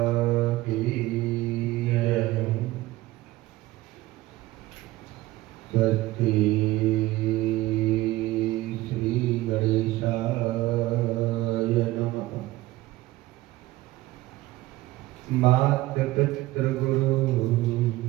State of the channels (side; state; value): left; quieter; 17.7 dB